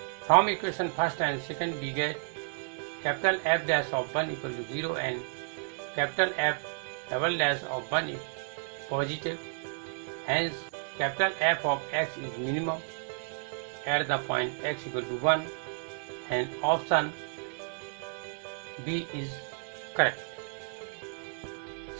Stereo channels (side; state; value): left; silent; 56 dB below the other